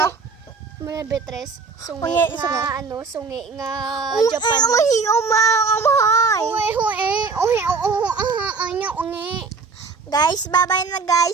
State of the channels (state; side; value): quieter; left; 4.7 dB